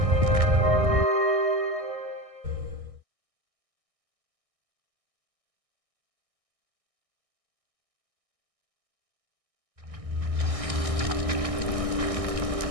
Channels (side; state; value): left; late; 1.6 ms